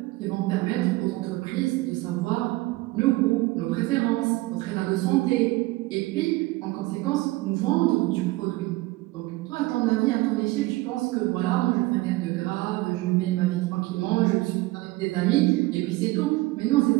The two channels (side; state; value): left; quieter; 19.9 dB